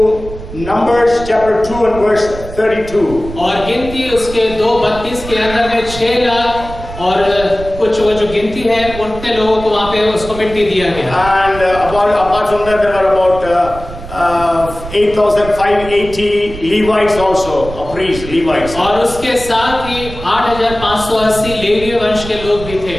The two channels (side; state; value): right; noise; rumble, 12 dB below the sound